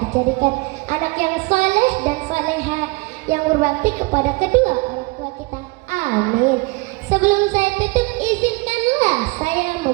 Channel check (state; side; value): quieter; left; 25.3 dB